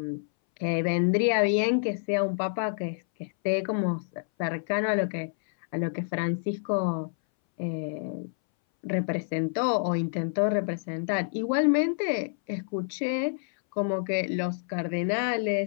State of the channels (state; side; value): silent; right; 59 dB below the other